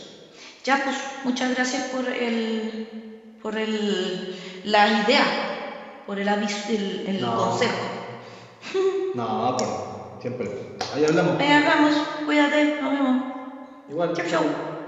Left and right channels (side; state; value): both; identical; correlation 1.00